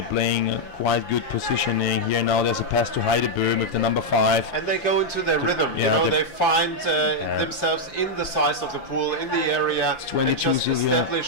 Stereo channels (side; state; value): right; late; 5.8 ms